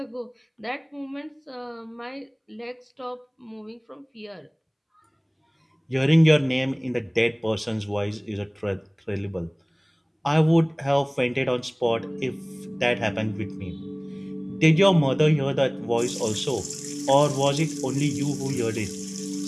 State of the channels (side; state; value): both; identical; correlation 1.00